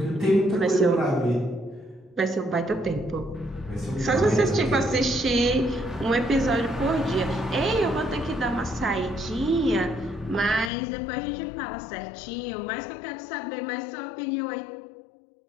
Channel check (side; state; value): right; drops out; at 10.7 s